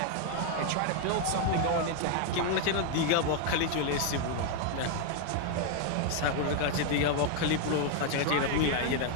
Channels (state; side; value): different; both; correlation 0.01